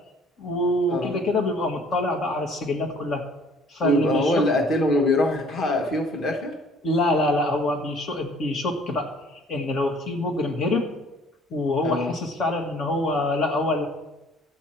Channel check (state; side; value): normal; both; correlation 0.55